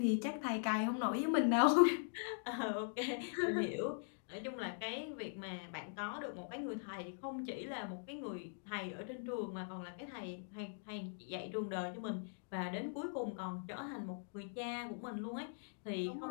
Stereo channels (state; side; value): silent; right; digital silence